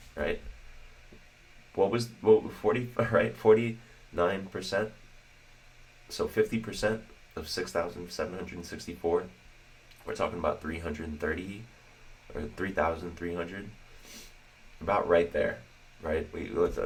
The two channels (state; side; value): identical; both; correlation 1.00